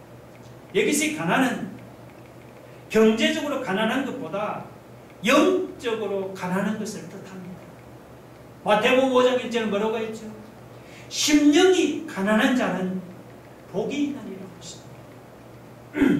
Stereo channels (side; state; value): both; identical; correlation 1.00